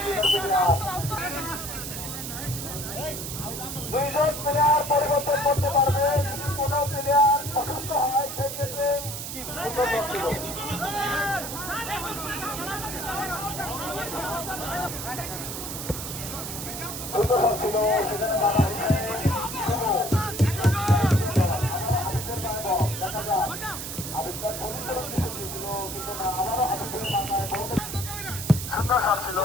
দুইজন প্লেয়ার পরিবর্তন করতে পারবে, কোন প্লেয়ার অসুস্থ হয় সেই ক্ষেত্রে সুন্দর শট ছিল। সুন্দর শট ছিল, সেখানে বাধা দেখা যায় আবিদার সুন্দর দিয়েছিল কিন্তু না, আবারও আবিদের মাথায় সুন্দর শট ছিল,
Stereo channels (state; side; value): noise; right; hiss, 7 dB below the sound